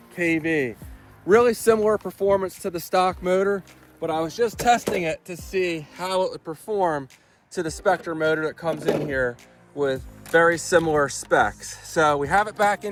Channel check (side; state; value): both; identical; correlation 1.00